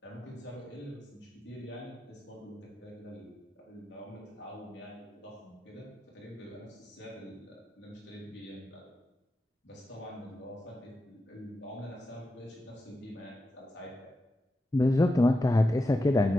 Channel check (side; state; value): both; normal; correlation 0.89